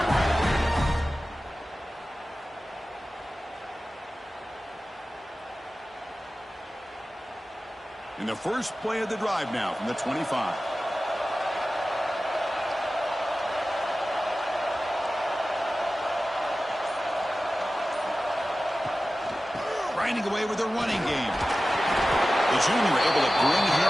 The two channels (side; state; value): both; normal; correlation 0.95